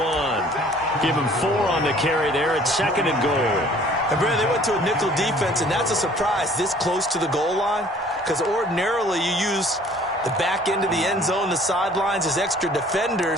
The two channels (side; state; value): both; normal; correlation 0.54